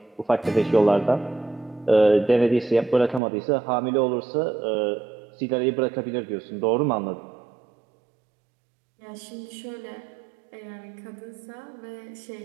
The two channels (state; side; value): drops out; left; at 3.2 s